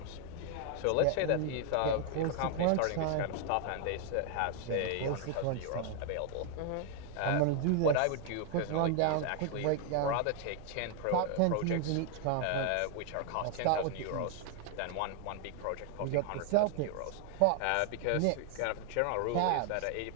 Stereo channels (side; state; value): both; different; correlation 0.00